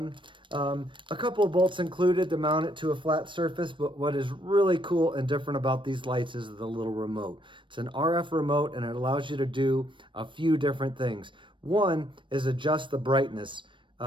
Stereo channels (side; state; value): left; late; 0.24 ms